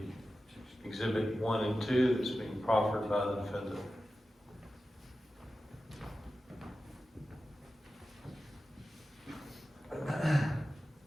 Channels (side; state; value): both; normal; correlation 0.93